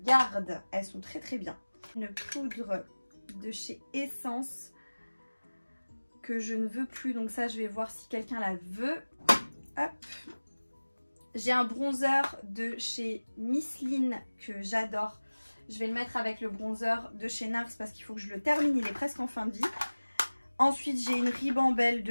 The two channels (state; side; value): inverted; both; correlation -1.00